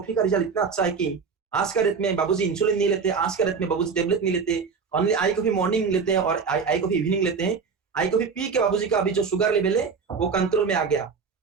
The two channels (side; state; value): left; quieter; 5.5 dB